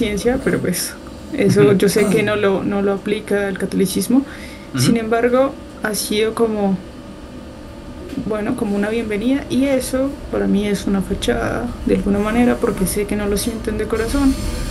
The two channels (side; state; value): both; identical; correlation 1.00